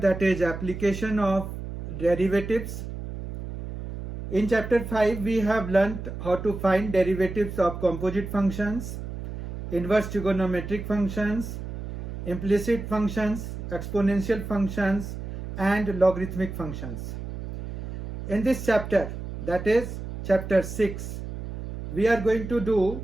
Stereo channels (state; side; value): noise; right; hum, 8 dB below the sound